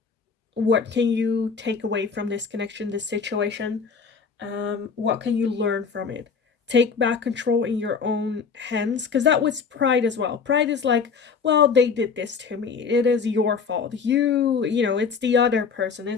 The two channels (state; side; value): quieter; right; 5.6 dB